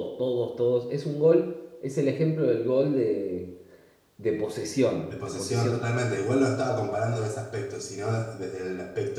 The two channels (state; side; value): identical; both; correlation 1.00